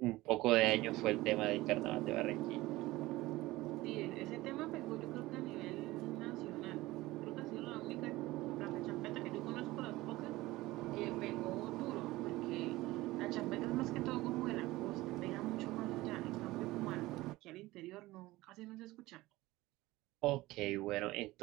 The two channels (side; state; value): left; quieter; 18.7 dB